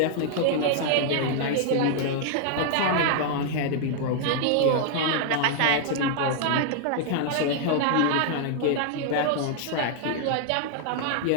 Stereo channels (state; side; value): different; both; correlation -0.01